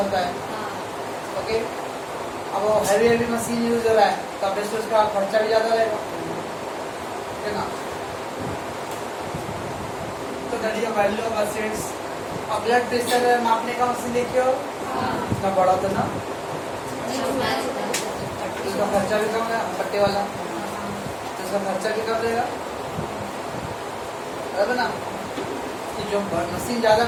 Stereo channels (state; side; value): identical; both; correlation 1.00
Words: है। ओके, अब वो हैवी हैवी मशीन यूज हो रहा है तो अब उसका खर्चा भी ज्यादा रहेगा, है ना। तो that is value of assets. और ब्लड प्रेशर मापने का मशीन देखे हो, इतना बड़ा होता ना, उसका खर्चा भी कम है, पट्टे वाला, तो उसका खर्चा भी कम रहेगा, बराबर ना। कि जो मशीन ज्यादा